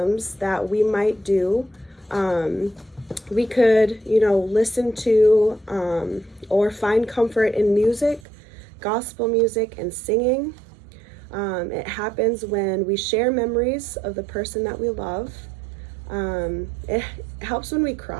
that we might do, we could, listen to or find comfort in music, gospel music, and singing. It happens when we share memories of the person that we love. It helps when we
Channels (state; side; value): drops out; left; at 8.2 s